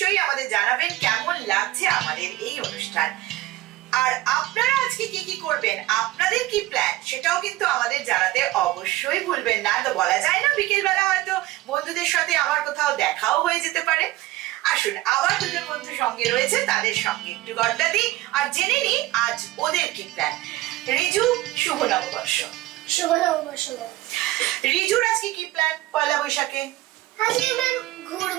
আমাদের জানাবেন কেমন লাগছে আমাদের এই অনুষ্ঠান। আর আপনারা আজকে কি কি করবেন, আপনাদের কি প্ল্যান, সেটাও কিন্তু আমাদের জানাতে অবশ্যই ভুলবেন না। তো বলা যায় না, বিকেল বেলা হয়তো বন্ধুদের সাথে আমার কোথাও দেখাও হয়ে যেতে পারে। আসুন, আবার দুজন বন্ধু সঙ্গে রয়েছে, তাদের সঙ্গে একটু গড্ডা দিই আর জেনে নিই আজ ওদের কি প্ল্যান। রিজু, শুভ নববর্ষ। শুভ নববর্ষ। রিজুর আজকে কি প্ল্যান পয়লা বৈশাখে? আজকে ম্যাম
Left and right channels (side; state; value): left; quieter; 16.9 dB